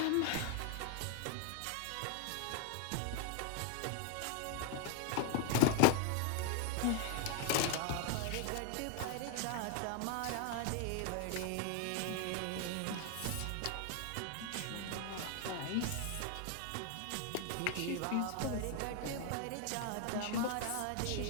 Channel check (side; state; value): both; different; correlation 0.00